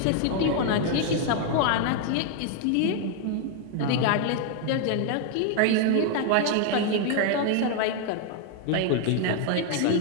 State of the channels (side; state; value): both; different; correlation 0.00